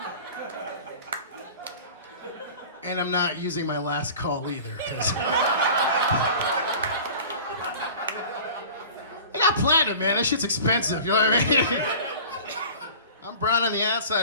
And I'm not using my last call either, because I got platinum, man. That shit's expensive, you know what I mean? I'm brown on the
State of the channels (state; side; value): inverted; both; correlation -0.40